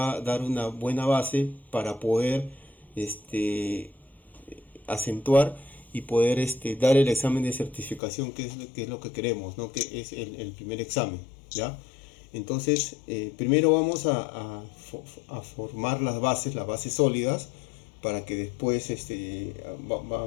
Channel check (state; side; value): drops out; right; at 8.0 s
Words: a dar una buena base para poder este, acentuar y poder dar el examen de certificación, que es lo que queremos, ¿no? Que es el primer examen, ¿ya? Entonces, primero vamos a formar las bases sólidas, para que después